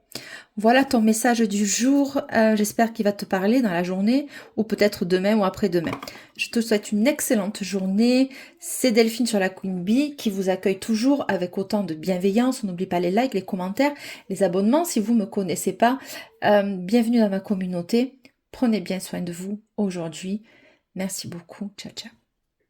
Voilà ton message du jour. J'espère qu'il va te parler dans la journée ou peut-être demain ou après-demain. Je te souhaite une excellente journée. C'est Delphine sur la Queen Bee qui vous accueille toujours avec autant de bienveillance. On n'oublie pas les likes, les commentaires, les abonnements si vous ne me connaissez pas. Bienvenue dans ma communauté. Prenez bien soin de vous aujourd'hui. Merci beaucoup. Ciao, ciao.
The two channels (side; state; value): both; identical; correlation 1.00